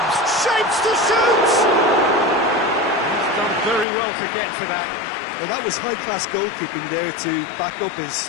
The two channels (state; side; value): drops out; right; at 3.9 s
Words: Shapes to shoot! He's done very well to get to that. Well, that was high-class goalkeeping there to back up his